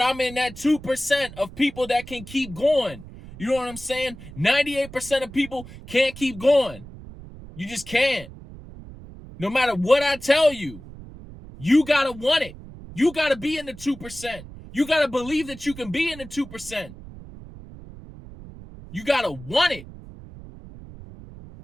I'm in that 2% of people that can keep going. You know what I'm saying? 98% of people can't keep going. You just can't. No matter what I tell you, you got to want it. You got to be in the 2%. You got to believe that you can be in the 2%. You got to want it.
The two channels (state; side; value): noise; right; rumble, 16 dB below the sound